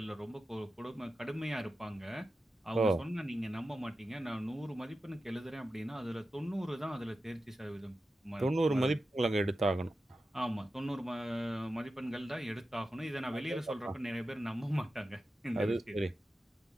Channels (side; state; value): both; normal; correlation 0.92